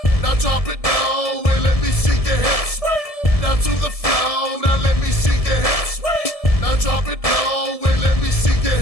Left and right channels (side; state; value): right; late; 1.7 ms